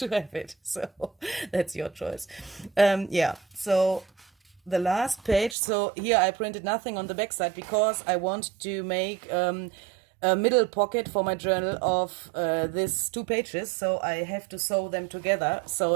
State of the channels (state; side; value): drops out; left; at 5.6 s